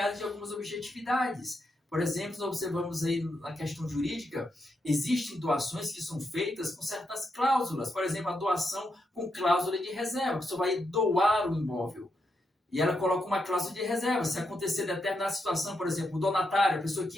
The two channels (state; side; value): normal; both; correlation 0.82